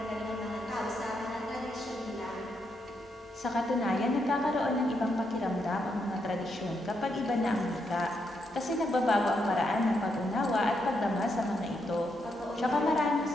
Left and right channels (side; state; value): both; normal; correlation 0.80